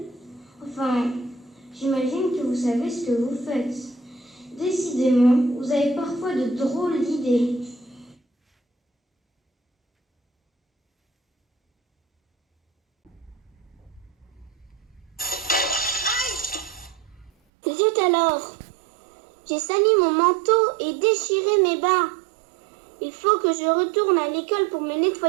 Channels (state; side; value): drops out; left; at 17.3 s